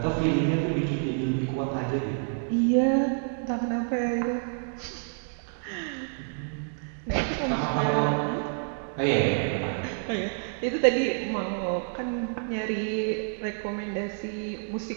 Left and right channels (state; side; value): silent; left; 59 dB below the other